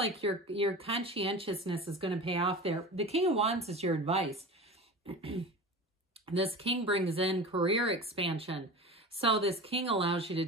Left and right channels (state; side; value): normal; both; correlation 0.32